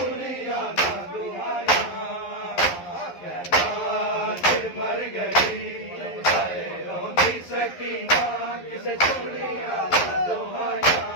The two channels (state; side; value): late; right; 11 ms